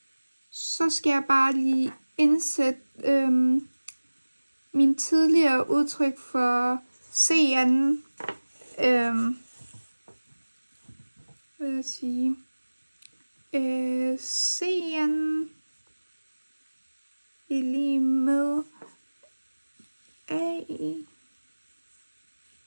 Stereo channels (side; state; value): both; inverted; correlation -1.00